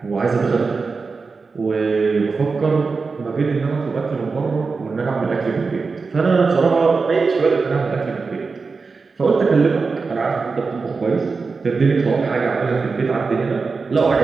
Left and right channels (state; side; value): quieter; left; 4.5 dB